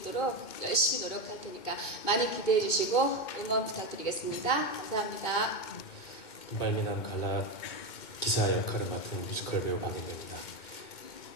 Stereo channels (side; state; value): right; late; 2.1 ms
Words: 열심히 노력할 테니까 많이 기대해 주시고 응원 부탁드리겠습니다. 감사합니다. 금발미남 갈라 기사 역할을 맡은 뮤지컬 배우 박윤대입니다.